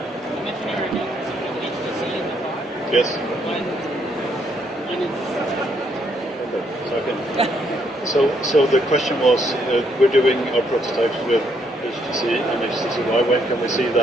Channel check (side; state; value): both; normal; correlation 0.72